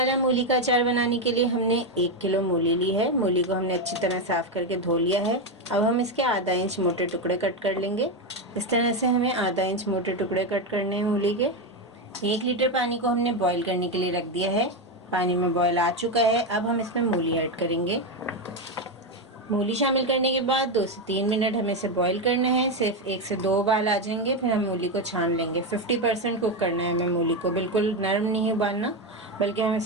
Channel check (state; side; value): normal; both; correlation 0.10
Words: मूली का अचार बनाने के लिए हमने 1 किलो मूली ली है। मूली को हमने अच्छी तरह साफ़ करके धो लिया है। अब हम इसके आधा इंच मोटे टुकड़े कट कर लेंगे। इस तरह से हमें आधा इंच मोटे टुकड़े कट करने हैं मूली के। 1 लीटर पानी को हमने बॉईल करने के लिए रख दिया है। पानी में बॉईल आ चुका है। अब हम इसमें मूली ऐड करेंगे। मूली शामिल करने के बाद 2 से 3 मिनट हमें इसे बॉईल करना है। सिर्फ 1 से 2 उबाल आ जाएंगे, फिर हम मूली को छान लेंगे। 50% कुक करना है हमें मूली को, बिल्कुल नरम नहीं उबालना, बल्कि हम